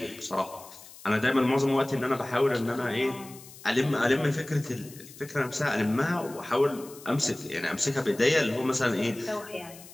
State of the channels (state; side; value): noise; left; hiss, 19 dB below the sound